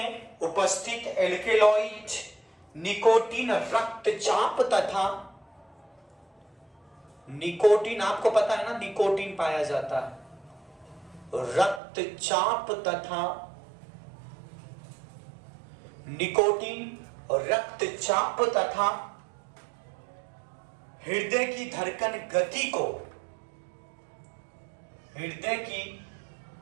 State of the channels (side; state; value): left; drops out; at 11.8 s